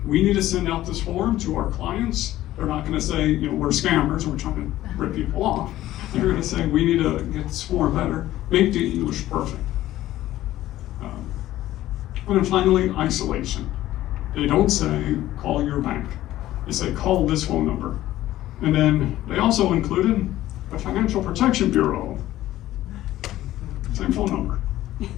we need to send out this form to our clients. They're not gonna say, we're scammers, we're trying to rip people off. They're gonna say, we need to get this form better, make the English perfect. And then finally, isolation. They don't say, call your bank. They say, call this phone number. And then they also included the Financial Protection Bureau. Same phone number.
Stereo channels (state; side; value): quieter; right; 14.6 dB